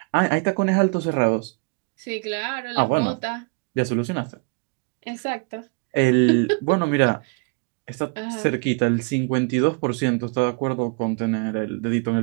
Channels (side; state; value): left; quieter; 31.7 dB